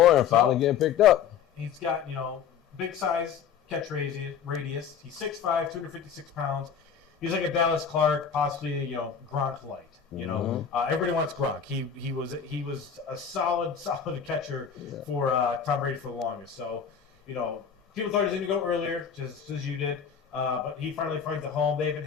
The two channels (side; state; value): right; quieter; 7.4 dB